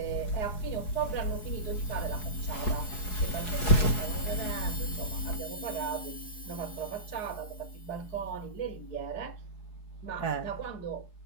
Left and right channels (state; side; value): late; right; 4.7 ms